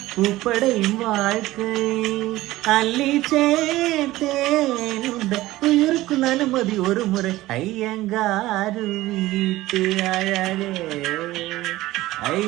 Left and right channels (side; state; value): left; quieter; 17.2 dB